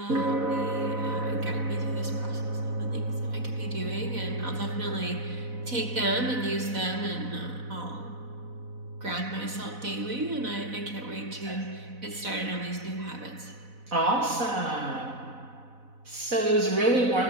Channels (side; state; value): left; late; 4.0 ms